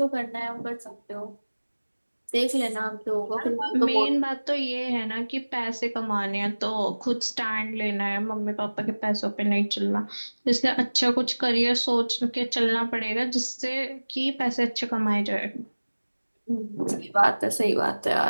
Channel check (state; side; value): inverted; both; correlation -1.00